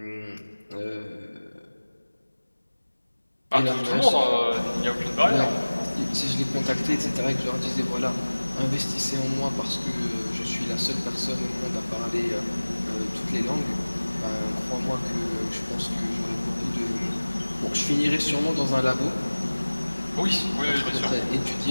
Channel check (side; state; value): both; inverted; correlation -1.00